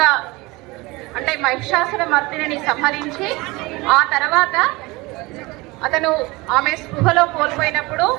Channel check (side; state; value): left; quieter; 23.0 dB